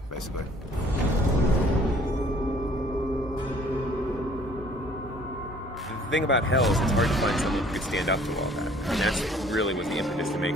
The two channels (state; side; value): normal; both; correlation 0.56